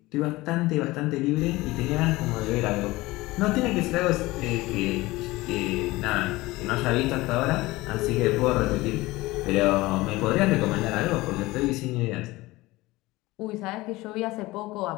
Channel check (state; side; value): quieter; right; 19.9 dB